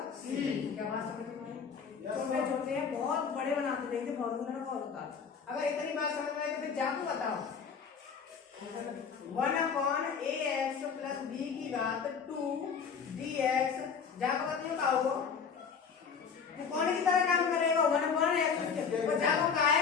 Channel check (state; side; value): quieter; right; 6.3 dB